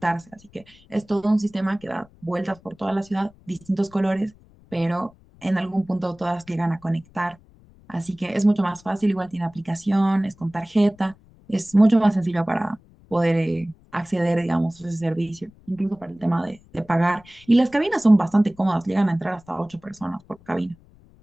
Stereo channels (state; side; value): noise; left; rumble, 27 dB below the sound